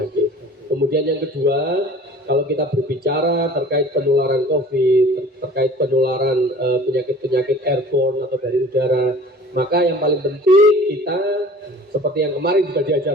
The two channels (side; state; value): both; normal; correlation 0.46